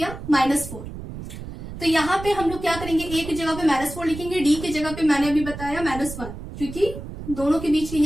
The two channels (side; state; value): right; noise; rumble, 11 dB below the sound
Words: -4। तो यहाँ पे हम लोग क्या करेंगे, a की जगह पे -4 लिखेंगे, d की जगह पे मैंने अभी बताया -1, क्योंकि दोनों के बीच,